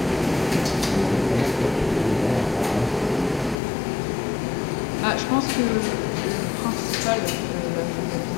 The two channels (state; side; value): drops out; right; at 3.6 s